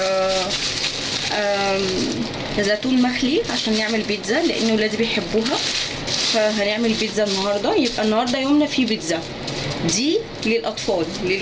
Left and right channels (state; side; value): identical; both; correlation 1.00